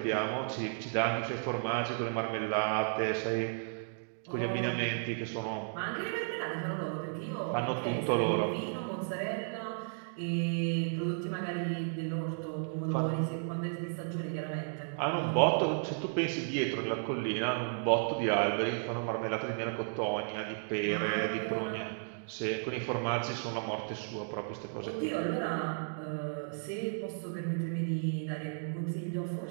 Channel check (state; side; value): silent; left; digital silence